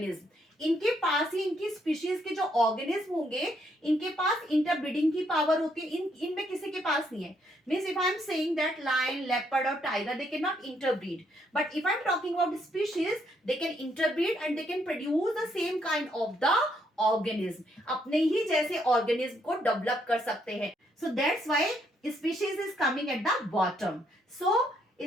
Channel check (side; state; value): both; normal; correlation 0.73